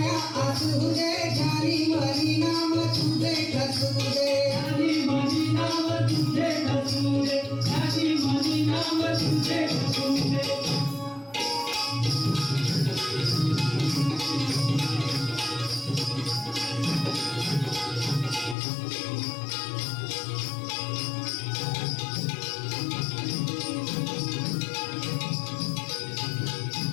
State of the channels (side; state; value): right; drops out; at 18.6 s